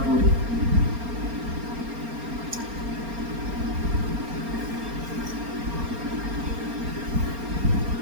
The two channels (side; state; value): left; late; 4.3 ms